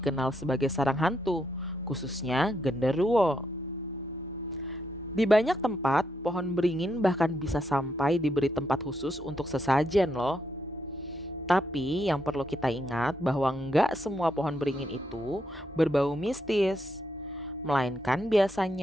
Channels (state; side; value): normal; both; correlation 0.79